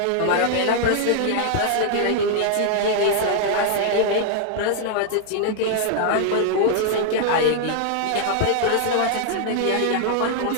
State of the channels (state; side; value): different; both; correlation 0.00